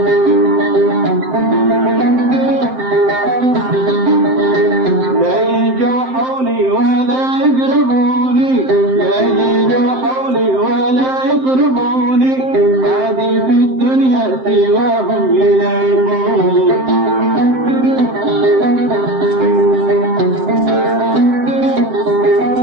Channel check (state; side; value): late; left; 7.7 ms